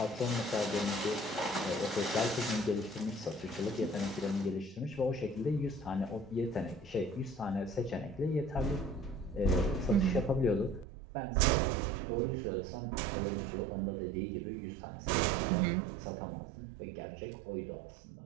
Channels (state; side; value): drops out; left; at 10.9 s